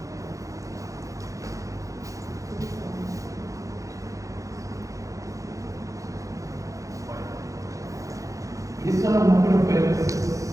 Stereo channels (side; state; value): left; late; 0.16 ms